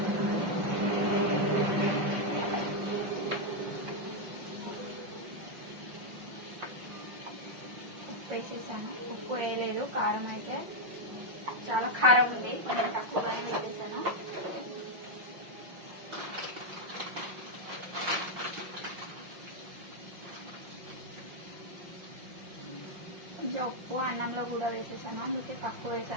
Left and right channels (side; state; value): left; late; 5.6 ms